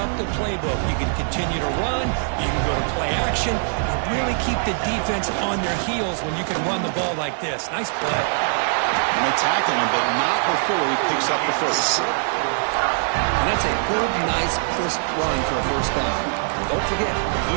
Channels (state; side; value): silent; left; digital silence